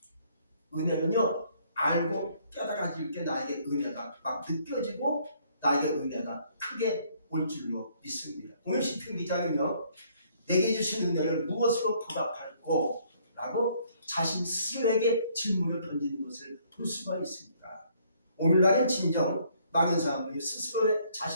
은혜는요 알고 깨달아질 때 나에게 은혜가 막 느껴지고 나에게 은혜가 크게 올 줄로 믿습니다. 오늘 시편 기자는요, 내게 주신 은혜를 무엇으로 보답할꼬? 라고 자신 스스로에게 질문을 던지는 것을 볼 수가 있습니다. 오늘날은 진정 많은 사람들이 스스로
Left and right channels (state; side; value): inverted; both; correlation -0.64